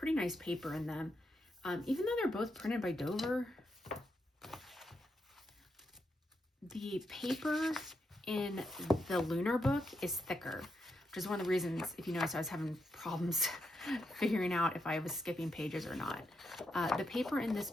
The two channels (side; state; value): both; normal; correlation 0.83